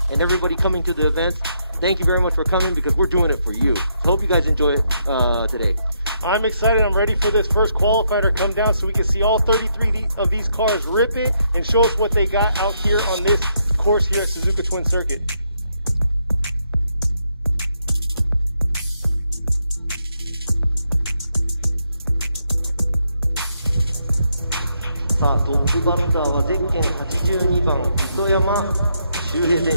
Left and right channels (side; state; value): both; inverted; correlation -0.77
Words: and everybody coming to the events. Thank you very much for coming because we're doing it for you. Hope you guys enjoy it today. I'm excited. I'm ready for this first qualifier to come down so we can see all 33 of these cars rip it and show us what they got out here on this course here at Suzuka Twin Circuit. さあ、トップバッターはゼッケン82番糸山修平選